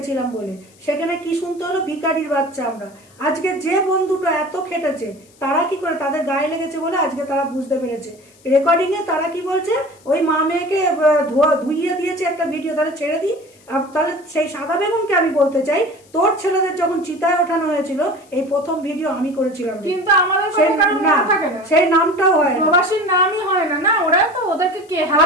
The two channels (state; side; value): noise; left; hiss, 29 dB below the sound